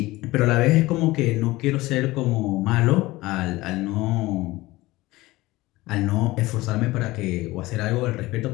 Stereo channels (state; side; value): quieter; right; 19.3 dB